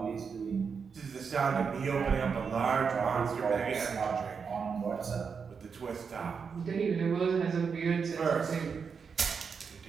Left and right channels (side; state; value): left; quieter; 5.9 dB